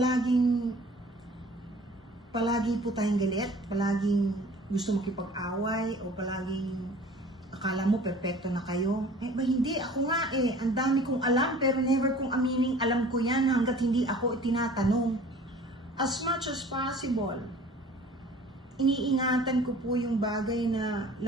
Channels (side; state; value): both; normal; correlation 0.47